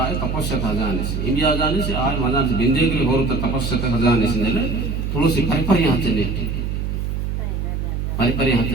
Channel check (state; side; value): noise; right; hum, 2 dB below the sound